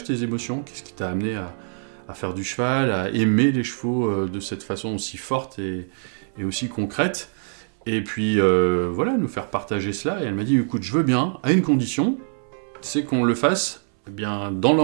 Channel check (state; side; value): silent; left; 63 dB below the other